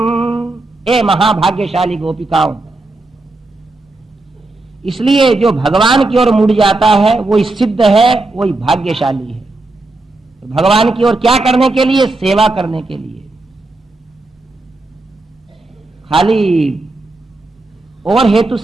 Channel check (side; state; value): left; quieter; 3.0 dB